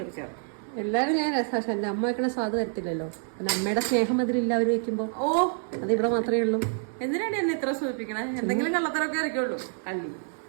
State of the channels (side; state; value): left; silent; 57 dB below the other